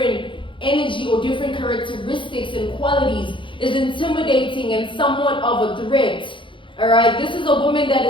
energy or different characteristics and qualities is intimidating and somewhat of a threat. All right, this is a woman that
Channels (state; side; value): late; right; 0.24 ms